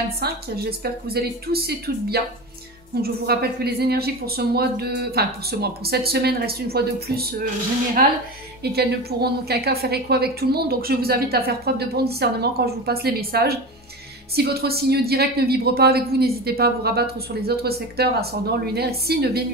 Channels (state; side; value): normal; both; correlation 0.27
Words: J'espère que vous allez tous et toutes bien. Donc je vous rappelle que les énergies pour ce mois de, pour cette semaine restent une fois de plus générales et qu'elles ne pourront en aucun cas faire écho avec tout le monde. Donc je vous invite à faire preuve de bon discernement quand je vous passe les messages. Si votre signe direct ne vibre pas avec vous, n'hésitez pas à vous rabattre sur les autres secteurs, ascendant, lunaire, signe